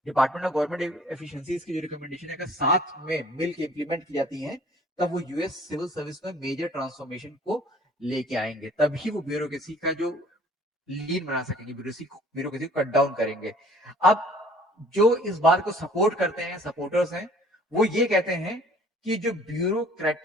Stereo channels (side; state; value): both; normal; correlation 0.53